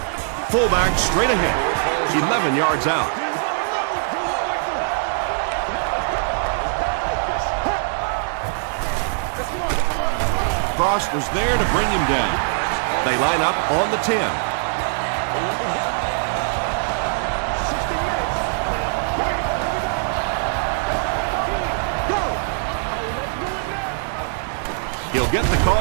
Fullback straight ahead. 11 yards out. Frost was there to bring him down. They line up on the 10. He'll get the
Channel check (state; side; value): silent; left; 64 dB below the other